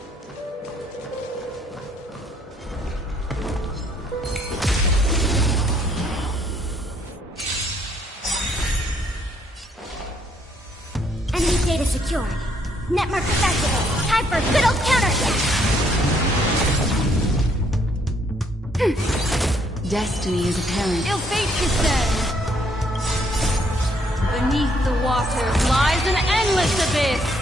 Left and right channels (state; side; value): normal; both; correlation 0.68